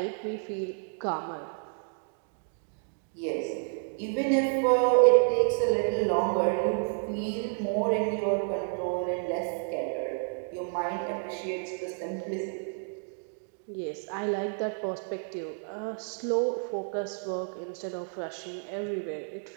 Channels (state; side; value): silent; left; 56 dB below the other